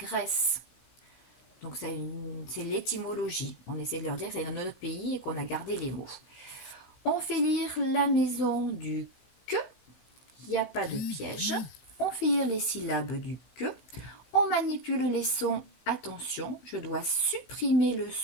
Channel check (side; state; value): right; late; 16 ms